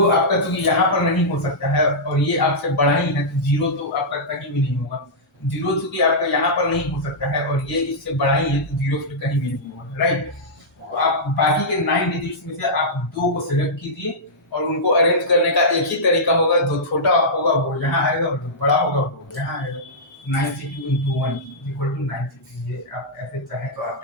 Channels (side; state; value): both; normal; correlation -0.12